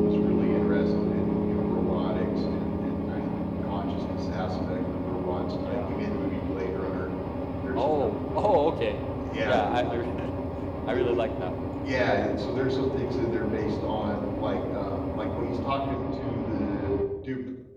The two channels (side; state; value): both; identical; correlation 1.00